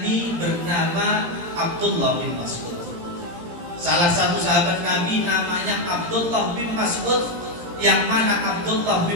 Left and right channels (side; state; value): left; late; 17 ms